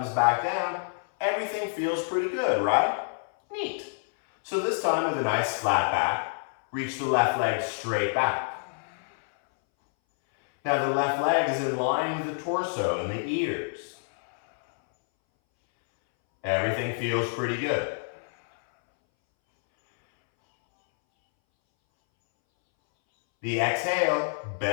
back down, everything feels pretty good, right? Neat. So this time with a nice flat back, reach the left leg straight back. Now the left leg is in line with the torso and the ears. Everything feels pretty good. The exhale,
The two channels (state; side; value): silent; right; 60 dB below the other